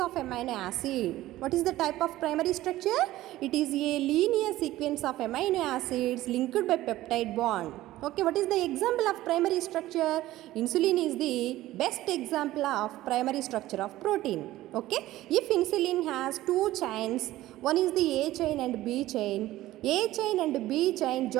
amino acid. What is the type of primary structure? It is a linear sequence of amino acids linked by peptide bond. Okay, what is the example of primary structure? Insulin is the best example of primary structure of protein. Okay, if insulin has 2 chains, one is the A chain and B chain. A chain and B chain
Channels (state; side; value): quieter; left; 15.8 dB